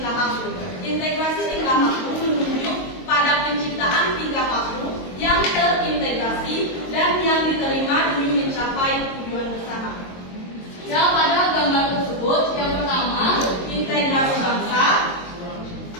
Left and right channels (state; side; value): late; right; 22 ms